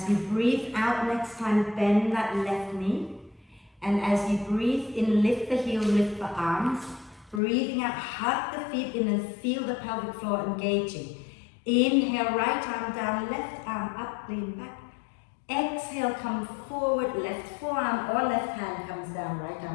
you breathe out next time, bend that left knee. And as you breathe in, lift the heel, lift the arms. Breathing out, hug the feet in and feel the pelvic floor engaging. Inhale, right arm down, left arm up, lean back. Exhale, come forward, left forearm or left hand comes down, right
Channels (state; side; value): drops out; right; at 7.4 s